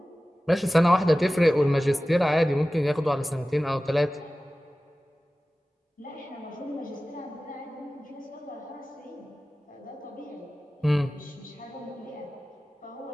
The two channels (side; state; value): both; normal; correlation 0.96